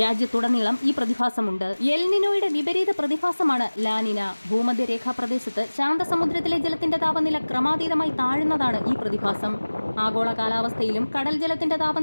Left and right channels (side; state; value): both; inverted; correlation -1.00